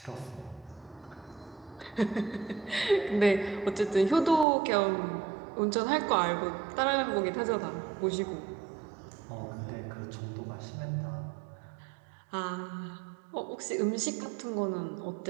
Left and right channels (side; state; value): left; drops out; at 4.5 s